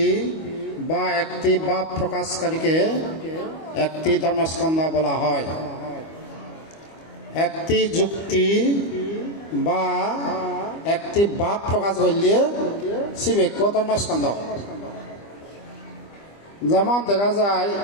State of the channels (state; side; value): late; right; 25 ms